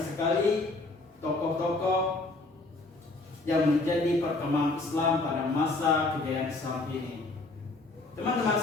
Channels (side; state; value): right; quieter; 3.2 dB